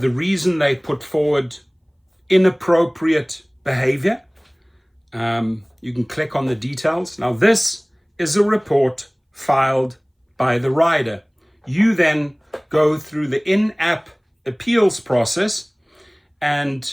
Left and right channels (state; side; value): identical; both; correlation 1.00